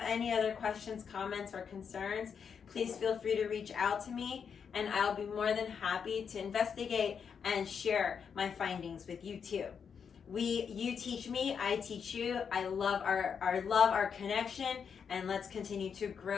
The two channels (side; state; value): right; quieter; 6.8 dB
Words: any other questions, comments, or concerns, please feel free to reach out to me, and I'll be more than happy to investigate and share my findings with you too. You teach me, I teach you. I love our connection, and let's continue to